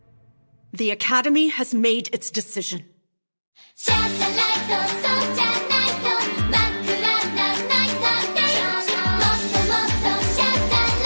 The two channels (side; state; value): both; inverted; correlation -1.00